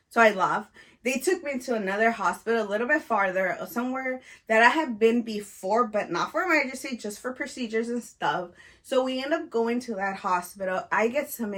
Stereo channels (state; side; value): identical; both; correlation 1.00